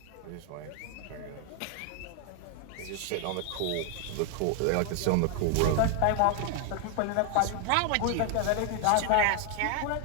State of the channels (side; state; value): both; different; correlation 0.00